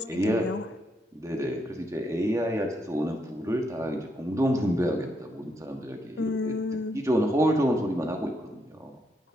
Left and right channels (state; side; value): normal; both; correlation 0.78